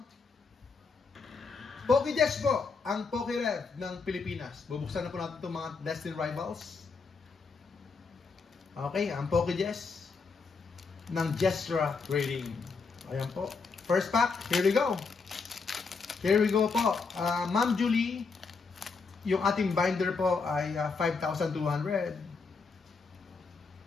PokeJess po ang PokeRev ng Pilipinas. Bubuksan na po natin itong mga Destined Rivals. Okay, ang PokeJess ng Jestra Trading. Ayan po. First pack, here we go. Here we go po. Ma'am Julie, yung ating binder po ay 5,200.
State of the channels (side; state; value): right; quieter; 4.7 dB